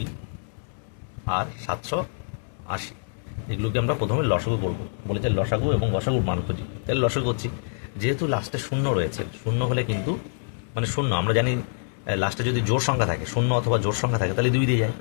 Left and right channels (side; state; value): right; silent; 61 dB below the other